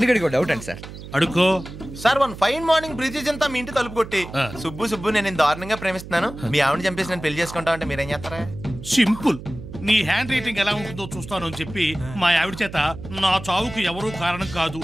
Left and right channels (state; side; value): noise; right; hum, 13 dB below the sound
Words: డౌట్ అండి సార్. అడుకో sir one fine morning bridges అంతా మీ ఇంటి తలుపు కొట్టి సుబ్బు నేను దారుణంగా ప్రేమిస్తున్నాను, మీ ఆవిడ చంపేసి నేను పెళ్లి చేసుకుంటా అంటే మీరేం చేస్తారా? సింపుల్. నీ హ్యాండ్ రైటింగ్ ఎలా ఉంటుందో చూస్తాను అని చెప్పి మా ఆవిడ చేత నా చావుకు ఎవరూ కారణం కాదు